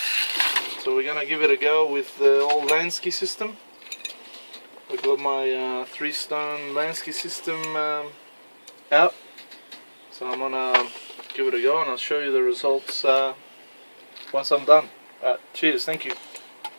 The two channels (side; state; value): both; inverted; correlation -1.00